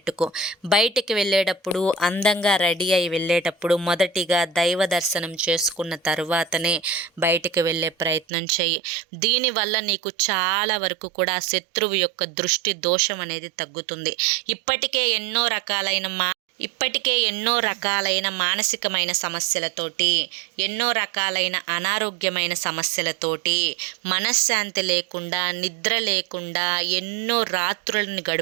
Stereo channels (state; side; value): drops out; left; at 8.2 s